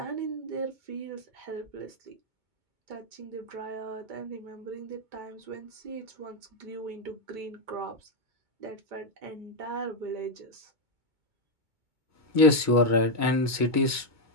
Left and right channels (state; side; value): late; left; 2.2 ms